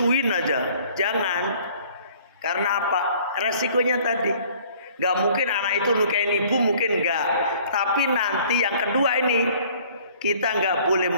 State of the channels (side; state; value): both; inverted; correlation -0.54